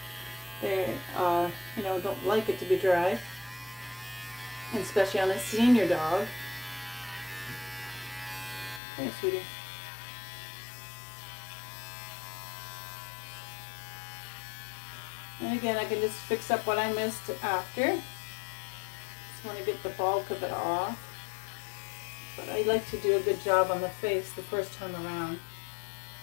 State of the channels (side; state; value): right; drops out; at 8.8 s